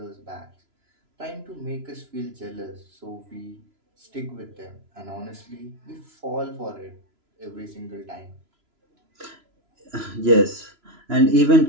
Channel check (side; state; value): left; late; 3.0 ms